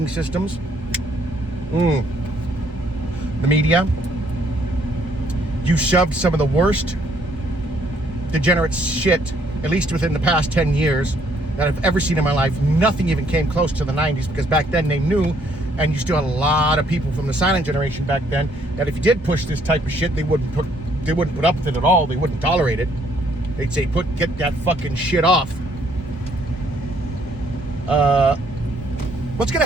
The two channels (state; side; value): normal; both; correlation 0.67